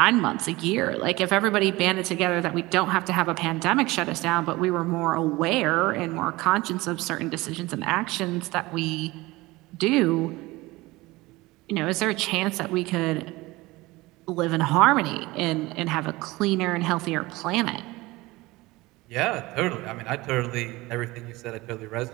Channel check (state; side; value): quieter; left; 20.8 dB